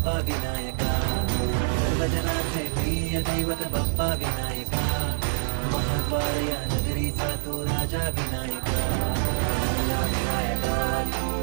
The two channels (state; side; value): silent; left; 61 dB below the other